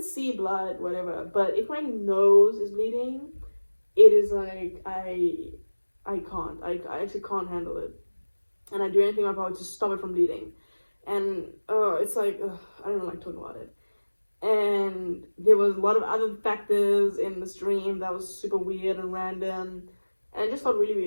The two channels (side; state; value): both; inverted; correlation -1.00